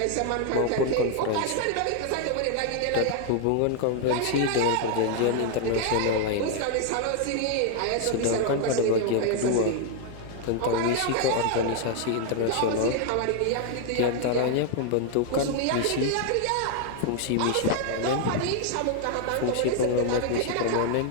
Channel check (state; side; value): different; both; correlation 0.00